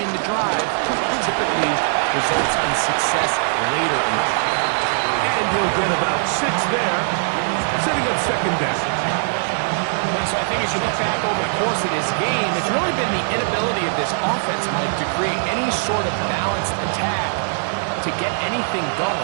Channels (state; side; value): silent; left; digital silence